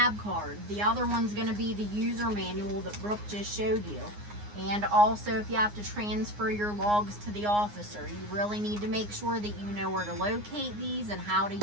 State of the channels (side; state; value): left; late; 9.7 ms